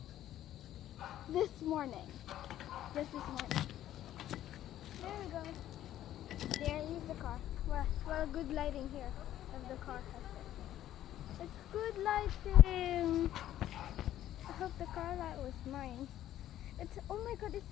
This morning. This morning. There we go. There is the car. Well, good lighting here. If the car has it. It's good lighting. I hope the car light was mine. It's, oh my god,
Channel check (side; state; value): right; quieter; 12.5 dB